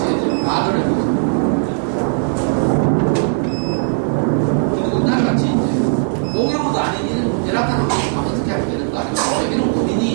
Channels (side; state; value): left; silent; digital silence